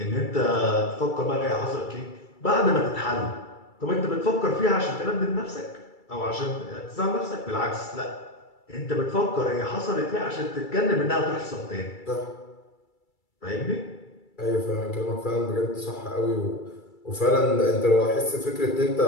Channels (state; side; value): late; right; 2.3 ms